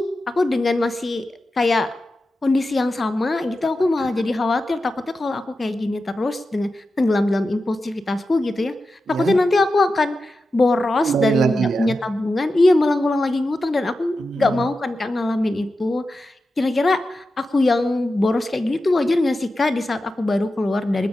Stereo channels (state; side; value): normal; both; correlation 0.91